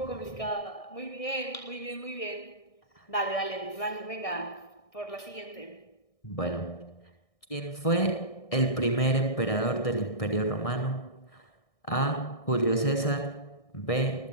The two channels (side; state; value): right; late; 1.6 ms